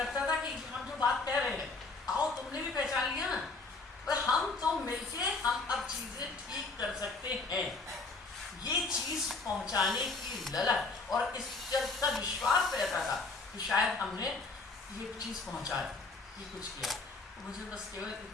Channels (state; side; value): quieter; right; 3.7 dB